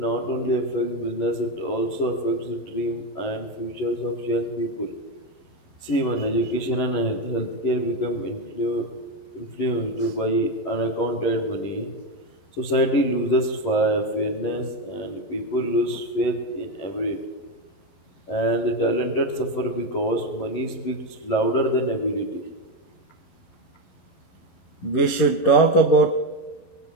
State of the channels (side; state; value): right; late; 11 ms